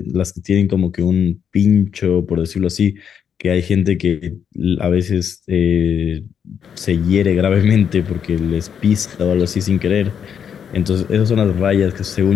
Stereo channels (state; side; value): quieter; right; 7.9 dB